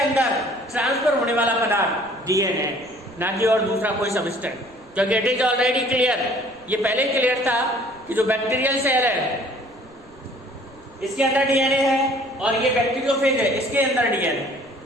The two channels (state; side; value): noise; right; rumble, 27 dB below the sound